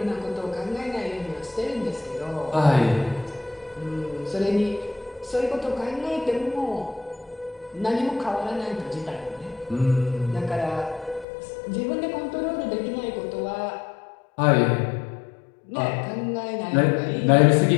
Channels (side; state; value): right; drops out; at 11.2 s